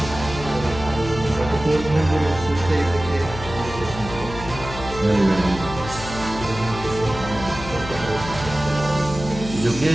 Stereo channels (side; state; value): left; noise; hum, 10 dB below the sound